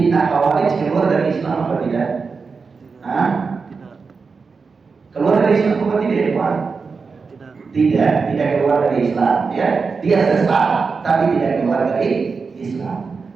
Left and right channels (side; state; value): left; quieter; 4.9 dB